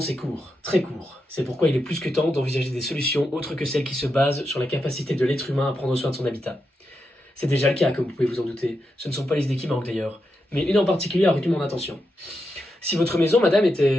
c'est court, très court. C'est pourquoi il est plus que temps d'envisager des solutions autres que celles qui se basent sur la capacité de l'être humain à prendre soin de son habitat. C'est déjà le cas, comme vous pouvez vous en douter. Ce ne sont pas les idées qui manquent d'ailleurs, mais une en particulier a retenu mon attention. Si votre maison, madame,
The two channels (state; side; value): normal; both; correlation 0.86